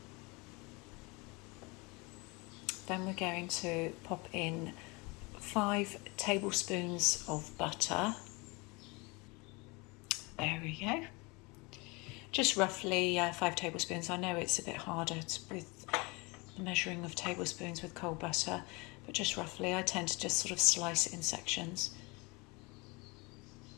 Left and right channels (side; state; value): right; quieter; 27.1 dB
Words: Then we're going to pop in 5 tablespoons of butter. There we go. Just roughly 5 tablespoons. I know it's a bit harder with the measuring of tablespoons with cold butter, but just roughly. I tend to just sort of slice it in sections.